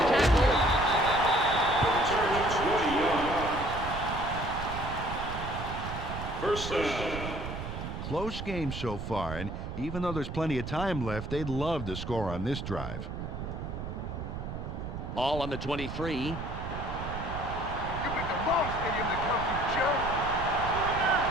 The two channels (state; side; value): noise; right; rumble, 7 dB below the sound